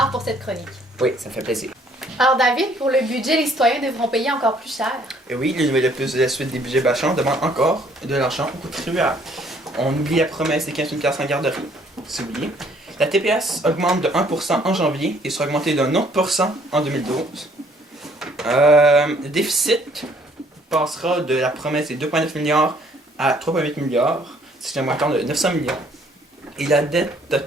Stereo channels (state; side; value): normal; both; correlation 0.62